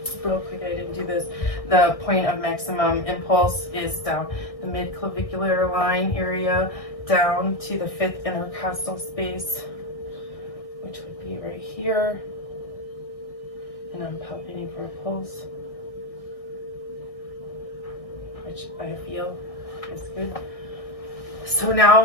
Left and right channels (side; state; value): right; late; 1.6 ms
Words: real quick, I didn't do this. The point of maximum impulse is down the mid-clavicular line area, down to the fifth intercostal space, which would be right here. And I'm palpating for a pulse, which I feel is good. So